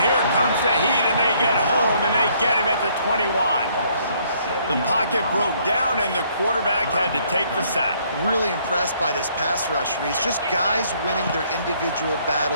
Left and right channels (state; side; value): inverted; both; correlation -0.65